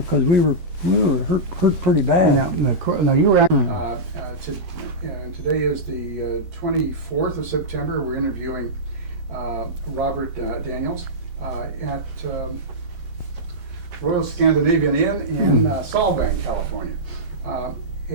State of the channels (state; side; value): late; left; 13 ms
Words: we were hurt pretty bad. Now you were Today is the 24th of September. We're interviewing Robert Daniels at Royal Scandinavian Inn in Solvang, California.